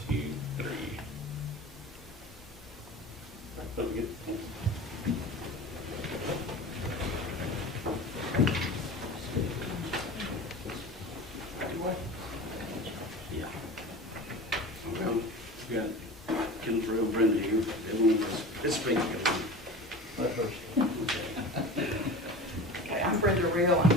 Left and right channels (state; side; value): normal; both; correlation 0.34